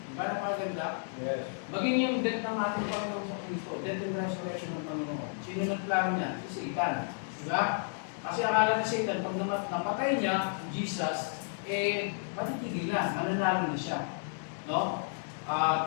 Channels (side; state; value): right; silent; digital silence